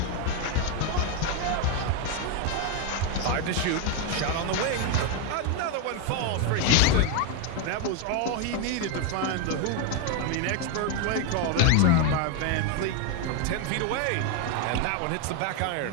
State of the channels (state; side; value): different; both; correlation 0.01